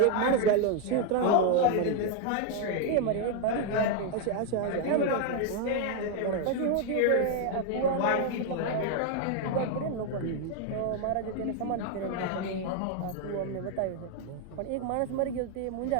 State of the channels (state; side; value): different; both; correlation 0.01